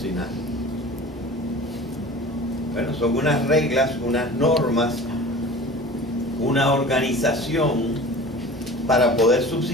Bueno, son unas reglas, unas normas, una organización para poder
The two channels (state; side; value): normal; both; correlation 0.40